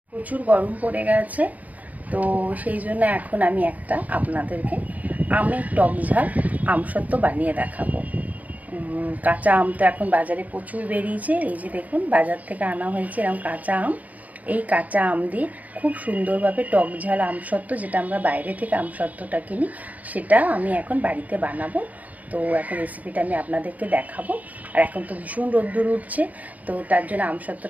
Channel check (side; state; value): left; late; 0.076 ms